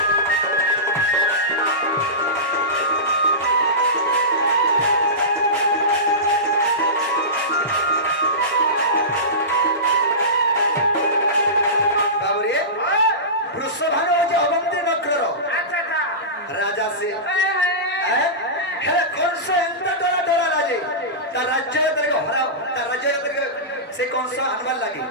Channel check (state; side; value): normal; both; correlation -0.20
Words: রাজা সে কংস এত ডরা ডরা রাজে তার রাজ্য হরাও তার রাজ্য সে কংস আনবার লাগে